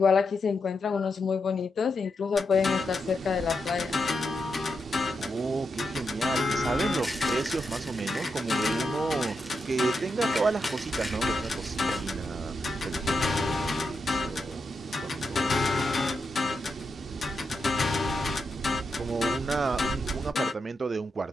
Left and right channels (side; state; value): both; normal; correlation 0.85